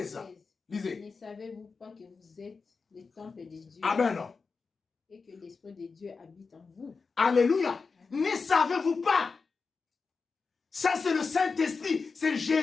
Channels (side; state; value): right; quieter; 4.7 dB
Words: Lisez. Ne savez-vous pas que vous êtes les temples de Dieu? Amen. Et que l'Esprit de Dieu habite en vous? Alléluia. Ne savez-vous pas? Ça, c'est le Saint-Esprit. C'est